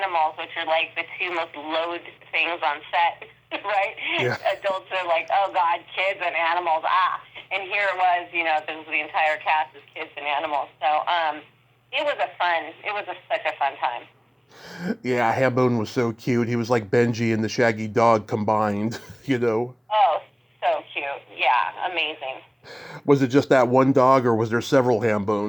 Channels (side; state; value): both; identical; correlation 1.00